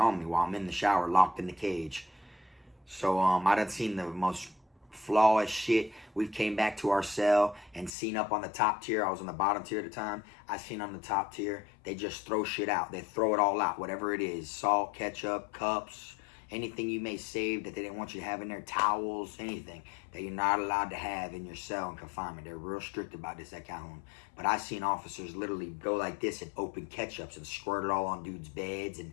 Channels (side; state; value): right; drops out; at 8.0 s